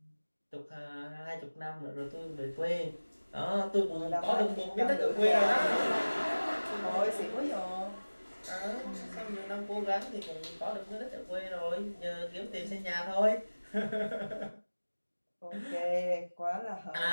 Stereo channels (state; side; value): inverted; both; correlation -1.00